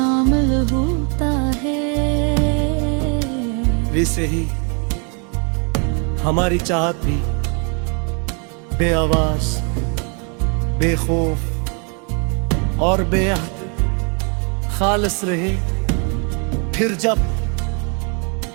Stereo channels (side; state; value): left; quieter; 36.7 dB